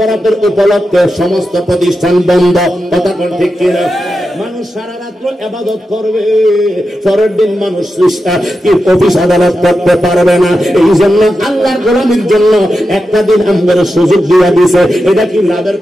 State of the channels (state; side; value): normal; both; correlation 0.90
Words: উপলক্ষে সমস্ত প্রতিষ্ঠান বন্ধ। কথা কোন ঠিক কিনা? মানুষ সারা রাত্র ইবাদত করবে, পরের দিন মানুষ অফিস আদালত করতে পারবে না। এই জন্য আল্লাহর গোলামির জন্য একটা দিন আমাদের সুযোগ দিয়া দিয়েছে। এটা কি লাভের